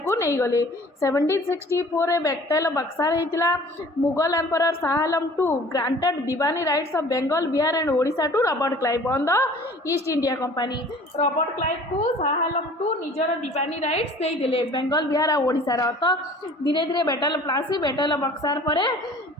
नहीं गले. 1764 रे बैटल ऑफ बक्सार हेतिला. Mughal emperor Shah Alam two granted Diwani rights of Bengal Bihar and Odisha to Robert Clive on the East India company. Robert Clive को शाह आलम टू निजर दीवानी राइट्स दे देले बेंगल बिहार और ओडिशा रो. तो धीरे धीरे battle of Plassey battle of Berkshire पर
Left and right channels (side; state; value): both; normal; correlation 0.48